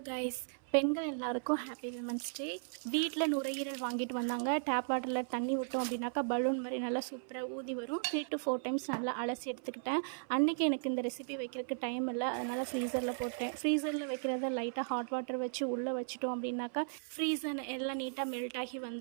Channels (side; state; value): left; silent; 54 dB below the other